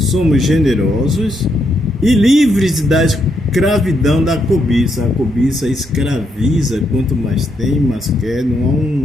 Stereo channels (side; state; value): both; normal; correlation 0.78